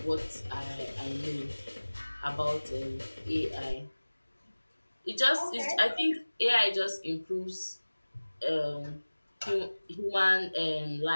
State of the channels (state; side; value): inverted; both; correlation -1.00